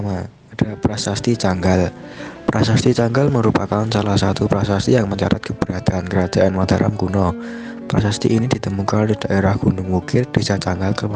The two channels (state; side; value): identical; both; correlation 1.00